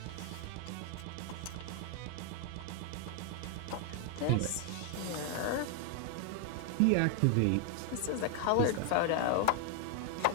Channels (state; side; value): different; both; correlation 0.00